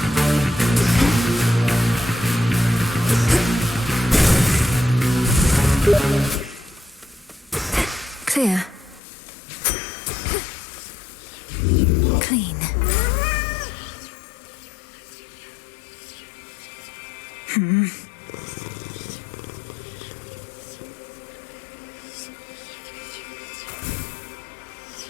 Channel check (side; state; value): right; drops out; at 9.0 s